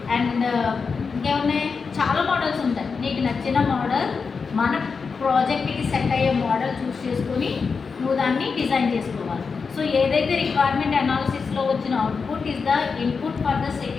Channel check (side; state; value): right; quieter; 5.2 dB